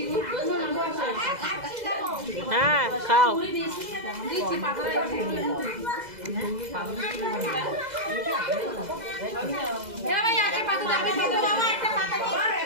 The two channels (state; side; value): late; left; 2.0 ms